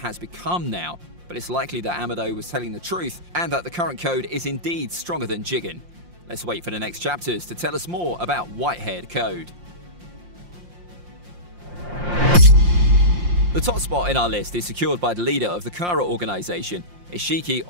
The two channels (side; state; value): left; late; 5.7 ms